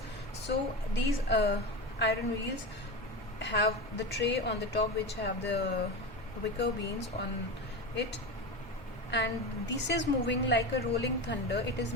So these iron wheels have the tray on the top, which have the wicker beans on it, and this is moving like a rolling thunder. It is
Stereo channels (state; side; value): normal; both; correlation 0.23